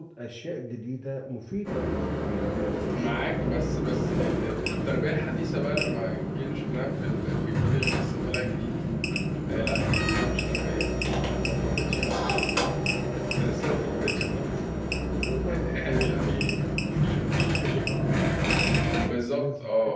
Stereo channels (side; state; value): both; identical; correlation 1.00